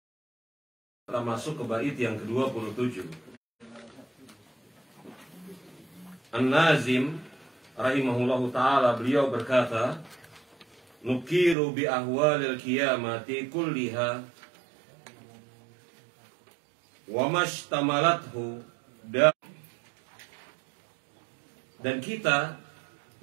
Kita masuk ke bait yang ke-27. An-Nazim rahimahullahu ta'ala, beliau berkata, nukiru bi ahwalil qiyamati kulliha wa mashtamalathu, dan kita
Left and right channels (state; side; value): drops out; left; at 11.6 s